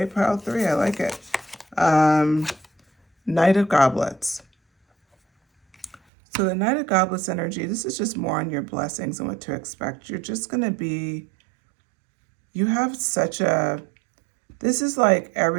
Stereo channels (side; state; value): left; drops out; at 6.0 s